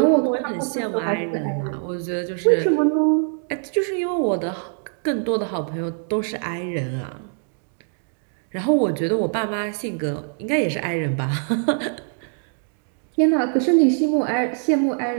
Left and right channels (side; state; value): left; silent; 60 dB below the other